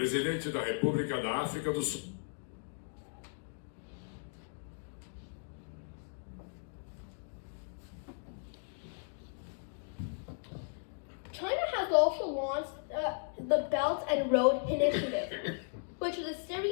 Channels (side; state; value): right; silent; digital silence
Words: da República da África do Sul. China has also launched the Belt and Road Initiative, which is a